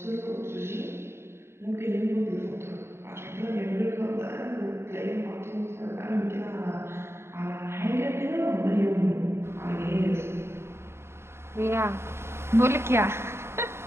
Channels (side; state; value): left; late; 0.12 ms